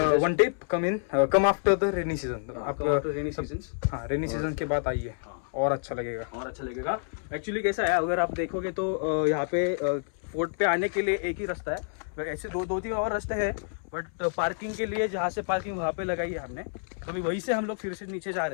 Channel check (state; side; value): silent; right; 59 dB below the other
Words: one tip come after the rainy season. आप रेनी सीजन्स, हाँ रेनी सीजन के बाद आइए और अच्छा लगेगा. एक्चुअली कैसा है, अगर आप देखोगे तो यहाँ पे फोर्ट पे आने के लिए एक ही रास्ता है. ऐसे दो तीन और रास्ते हैं, बट पार्किंग के लिए जहाँ से पार्किंग वहाँ पे लगाई है हमने, तो अभी वहीं से हम लोग फिर से नीचे जा